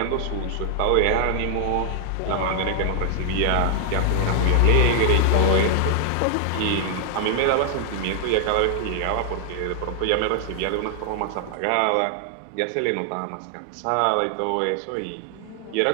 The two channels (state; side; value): different; both; correlation 0.00